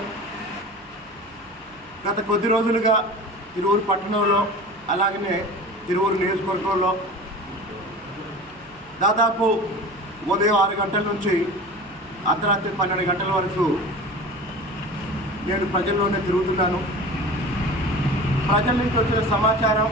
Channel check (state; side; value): noise; left; hum, 28 dB below the sound